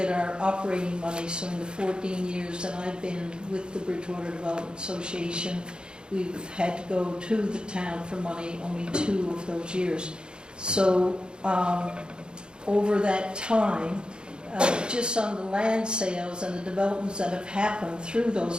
our operating money. So in the 14 years that I've been with the Bridgewater Development Association, we've had to go to the town for money only 2 of those years. So over that time, just on the land sales and the developments that have happened through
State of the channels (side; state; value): left; late; 0.050 ms